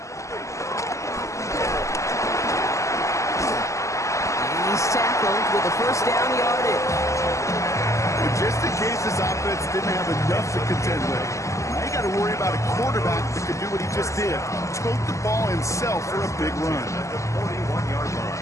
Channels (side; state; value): right; late; 0.15 ms